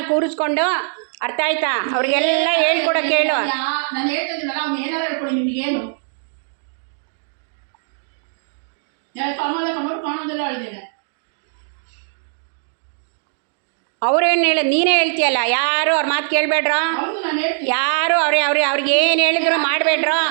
ಕೂರಿಸ್ಕೊಂಡು, ಅರ್ಥ ಆಯ್ತಾ, ಅವ್ರಿಗೆಲ್ಲ ಹೇಳ್ಕೊಡಕ್ಕೆ ಹೇಳು. ನಾನು ಹೇಳ್ತಿದ್ದೀನಲ್ಲ, ಅವ್ನು ಏನಾರು ಹೇಳ್ಕೊಡಿ, ನಿಮಗೇನು ಕಾಣೋದೆಲ್ಲ ಹೇಳಿದ್ದೇನೆ. ಅವ್ರೇನು ಹೇಳ, ನೀನೇ ಹೇಳ್ತೀಯಲ್ಲ, ಯಾರು ಅವ್ರ ಮಾತು ಕೇಳಬೇಡ್ರ, ಯಾರು ಅವ್ರಿಗೆ ಏನು ಹೇಳಿದ್ರು ಮಾಡಬೇಡ್ರ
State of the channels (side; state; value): left; silent; digital silence